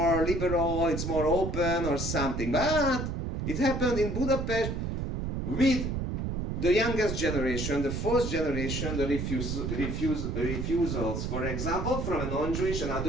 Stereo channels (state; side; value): noise; right; rumble, 3 dB below the sound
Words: liberal, it's more open or something. But it happened in Budapest with the youngest generation, the fourth generation, the refusals, for example, from a non-Jewish,